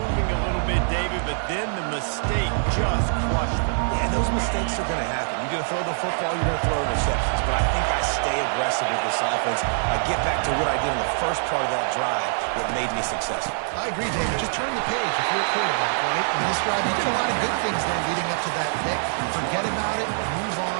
a little bit, David, but then the mistake just crushed them. Yeah, those mistakes are going to happen. You're going to throw the football, you're going to throw interceptions. But I think I stay aggressive with this offense. I get back to what I did in the first part of that drive that made me successful. I agree, David. Just turn the page if you're a quarterback, right? On this drive, you did a lot of good things there leading up to that pick. Forget about it, move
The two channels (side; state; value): left; silent; digital silence